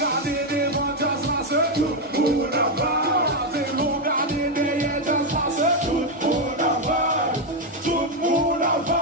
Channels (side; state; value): both; normal; correlation 0.04